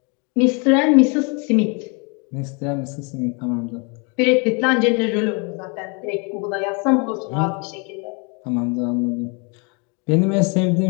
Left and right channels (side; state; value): right; quieter; 33.3 dB